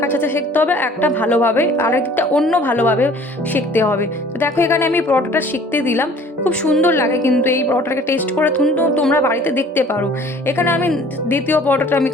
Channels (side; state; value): both; normal; correlation 0.51